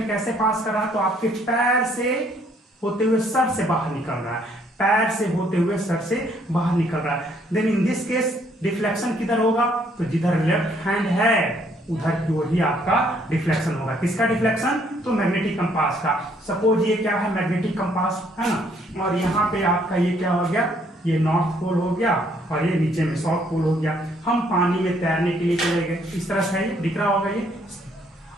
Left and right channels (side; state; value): both; normal; correlation 0.66